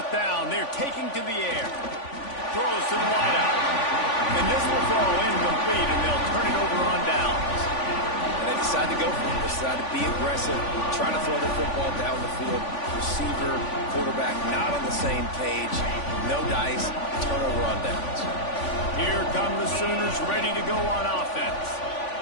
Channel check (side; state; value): right; late; 3.5 ms